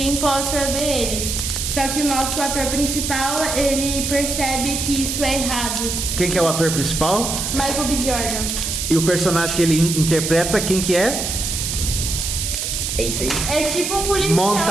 possa ver eles. Só que o nosso ator principal, ele percebe que isso é errado. Quem que é o ator principal? Michael B. Jordan. E o personagem que ele interpreta, quem que é? É isso aí. É tipo um policial.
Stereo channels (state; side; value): noise; right; hiss, 2 dB below the sound